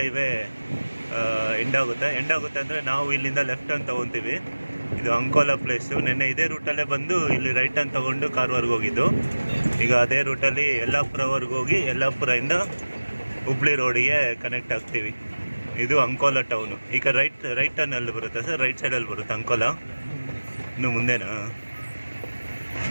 ಹೈವೇ ಎಂಡ್ ಆಗುತ್ತೆ ಅಂದರೆ ನಾವು ಇಲ್ಲಿಂದ ಲೆಫ್ಟ್ ಟರ್ನ್ ತೊಗೊತೀವಿ. ಇದು ಅಂಕೋಲಾ ಪ್ಲೇಸು. ನೆನ್ನೆ ಇದೇ ರೂಟಲ್ಲೇ ಬಂದು ಇಲ್ಲಿ ರೈಟ್ ಟರ್ನ್ ತೊಗೊಂಡು ಕಾರವಾರ್ಗೆ ಹೋಗಿದ್ದು. ಈಗ ಅದೇ ರೂಟಲ್ಲಿ ಯಲ್ಲಾಪುರವರೆಗೆ ಹೋಗಿ ಯಲ್ಲಾಪುರದಿಂದ ಹುಬ್ಳಿ ರೋಡಿಗೆ ಕನೆಕ್ಟ್ ಆಗ್ತೀವಿ. ಇದು ಅಂಕೋಲಾ ಟೌನು. ಈಗ ರೈಟ್ ಟರ್ನಲ್ಲಿ ಬರುತ್ತೆ ಸರ್, ರೈಟ್ ಸೈಡಲ್ಲಿ ಬರುತ್ತೆ ಅಂಕೋಲಾ. ಇನ್ನು ಮುಂದೆನಾ?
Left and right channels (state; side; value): inverted; both; correlation -1.00